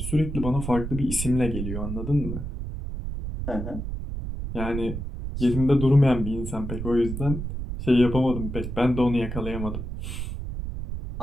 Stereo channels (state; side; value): noise; right; rumble, 5 dB below the sound